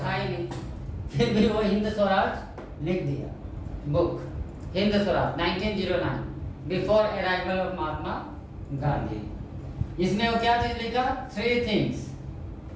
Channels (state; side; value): identical; both; correlation 1.00